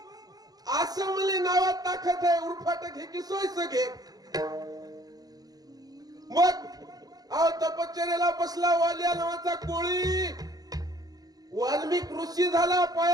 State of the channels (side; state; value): left; late; 0.19 ms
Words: असं म्हणले नावात ताकद आहे. उरफाट घे की सोयीचं घे. मग अहो तपश्चर्याला बसला वाल्या नावाचा कोळी. वाल्मिक ऋषी झाला